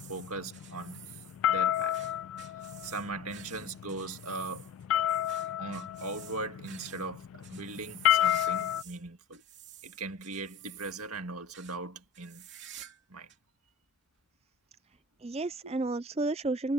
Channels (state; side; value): quieter; right; 5.0 dB